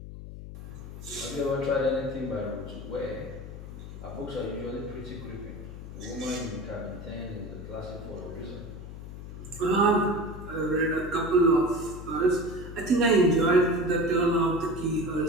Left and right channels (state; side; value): noise; left; hum, 11 dB below the sound